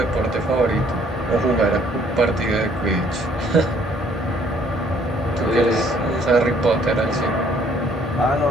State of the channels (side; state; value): both; normal; correlation 0.62